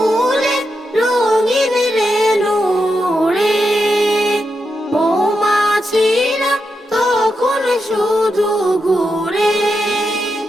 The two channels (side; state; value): both; normal; correlation 0.86